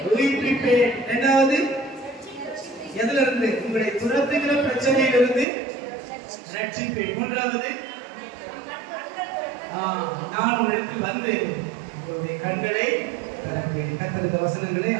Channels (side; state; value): left; drops out; at 5.5 s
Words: உயிர்ப்பிப்பேன். 2வது எதுல இருந்து? உங்களை துரத்துகிற பிரச்சனையிலிருந்து ரட்சிப்பேன். 3வது நான் உங்களிடத்தில் வந்து உங்களுடைய கண்களை திறப்பேன். கர்த்தர் இந்த வசனங்களை